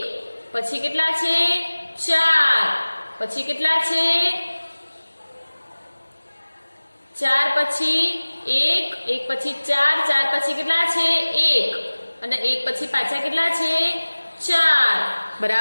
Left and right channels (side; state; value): both; inverted; correlation -1.00